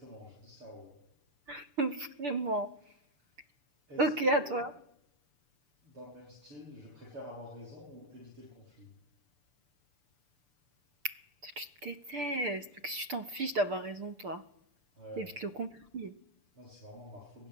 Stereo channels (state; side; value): late; left; 6.9 ms